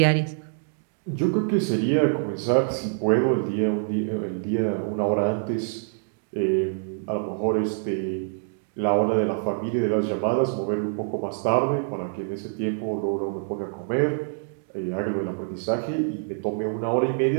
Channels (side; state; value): left; silent; digital silence